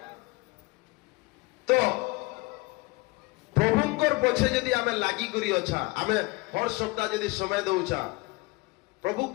तो प्रभुंकर पछे यदि आमे लागी करी अच्छा आमे हर सप्ताह यदि समय दउछा प्रभु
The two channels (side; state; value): right; quieter; 24.5 dB